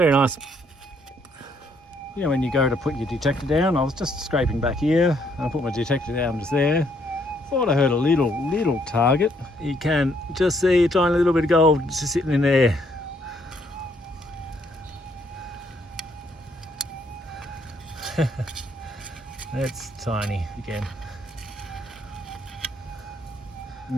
nice. You know, when you go to put your detector down, I was just scraping back here and I put my detector down just there. Thought I heard a little target. You can just see a tiny little bit of gold just sitting in there. That's tiny again. And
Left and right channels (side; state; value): both; normal; correlation 0.69